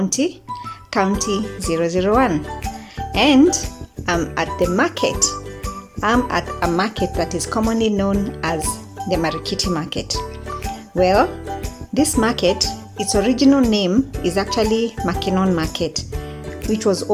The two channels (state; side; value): identical; both; correlation 1.00